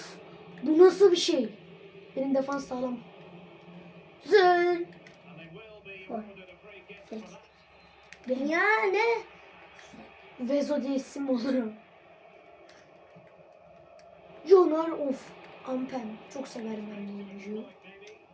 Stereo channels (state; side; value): identical; both; correlation 1.00